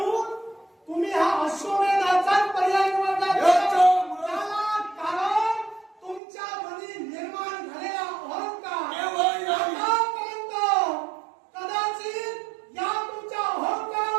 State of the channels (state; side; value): drops out; left; at 6.2 s